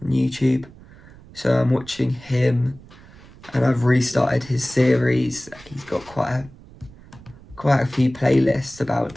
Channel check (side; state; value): right; noise; rumble, 22 dB below the sound